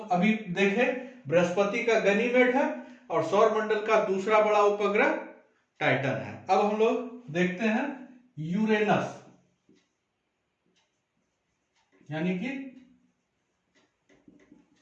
अभी देखे बृहस्पति का गनीमेड है और सौरमंडल का दूसरा बड़ा उपग्रह टाइटन है। अब हम लोग देखते हैं यूरेनस, यानी कि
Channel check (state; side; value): identical; both; correlation 1.00